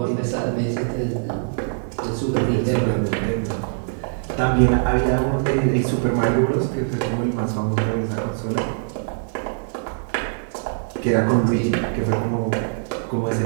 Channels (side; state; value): left; silent; 56 dB below the other